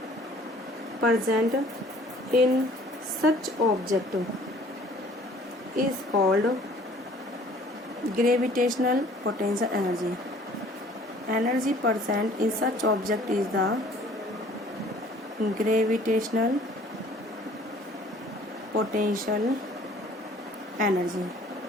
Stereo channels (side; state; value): both; normal; correlation 0.54